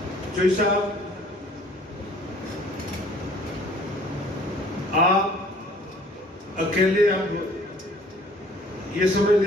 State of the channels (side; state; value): both; normal; correlation 0.54